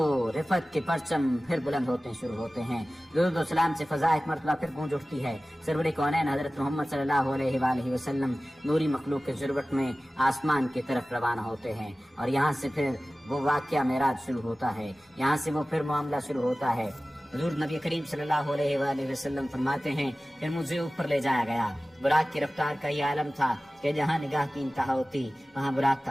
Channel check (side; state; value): both; normal; correlation 0.96